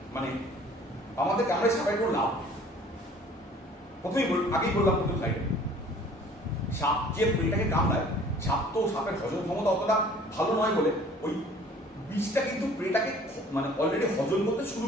মানে আমাদের কামড়ায় সাপের কোনো লাভ। প্রথমেই আগেই বললাম প্রথম সাইডে, সাপ যে এটাকে কামড়ায়, সাপ তো সাপের হজম ক্ষমতা অতটা ভালো নয় বলে ওই বিষটা কিন্তু প্রেটাকে মানে অলরেডি হজম করতে শুরু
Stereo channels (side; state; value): both; normal; correlation 0.51